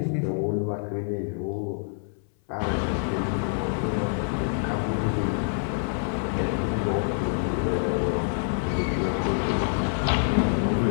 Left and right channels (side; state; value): right; silent; 58 dB below the other